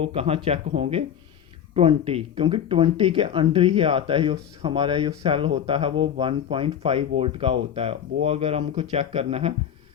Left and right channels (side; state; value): right; quieter; 9.2 dB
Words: कहाँ चेक होंगे, 20, क्योंकि 20 के अंडर ही आता है। जो हमारा जो सेल होता है वो 1.5 वोल्ट का होता है। वो अगर हमको चेक करना है